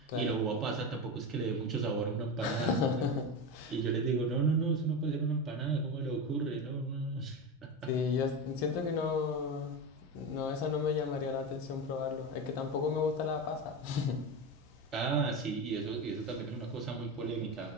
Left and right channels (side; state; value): both; normal; correlation 0.20